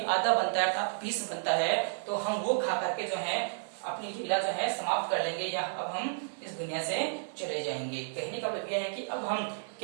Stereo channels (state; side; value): silent; left; digital silence